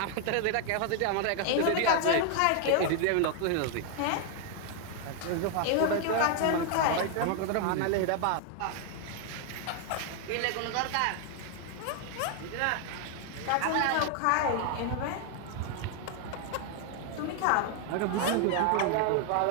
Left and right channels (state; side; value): different; both; correlation 0.00